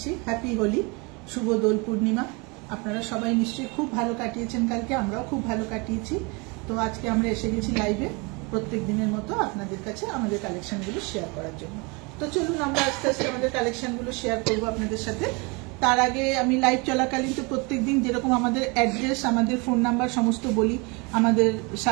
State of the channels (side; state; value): left; quieter; 29.1 dB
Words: হ্যাপি হোলি, শুভ দোল পূর্ণিমা। আপনারা সবাই নিশ্চয়ই খুব ভালো কাটিয়েছেন, কালকে আমরাও খুব ভালো কাটিয়েছি। তো আজকে আমরা এসে গেছি লাইভে প্রত্যেক দিনের মতো আপনাদের কাছে আমাদের কালেকশনগুলো শেয়ার করার জন্য। তো চলুন আমরা আস্তে আস্তে আমাদের কালেকশনগুলো শেয়ার করবো আপনাদের সাথে। তার আগে আমি লাইভ চলাকালীন তো প্রত্যেকদিন যেরকম আমাদের অ্যাড্রেস, আমাদের ফোন নাম্বার সমস্ত বলি, আমাদের